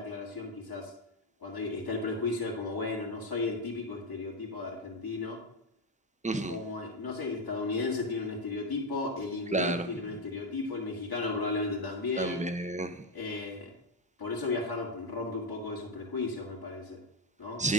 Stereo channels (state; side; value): normal; both; correlation 0.07